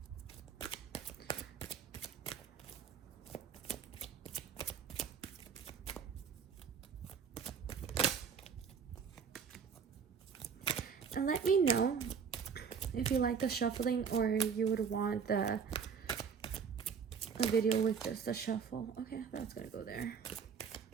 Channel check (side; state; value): left; quieter; 6.6 dB